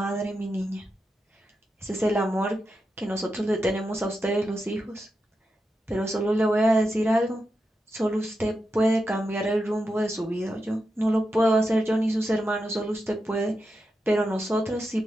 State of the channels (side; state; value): both; normal; correlation 0.88